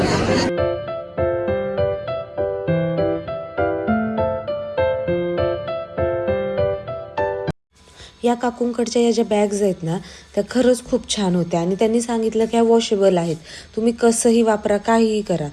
या काकूंकडच्या या ज्या बॅग्स आहेत ना, त्या खरंच खूप छान होत्या. आणि त्यांनी सांगितलं की ह्या वॉशेबल आहेत, तुम्ही कसंही वापरा, काहीही करा,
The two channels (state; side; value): identical; both; correlation 1.00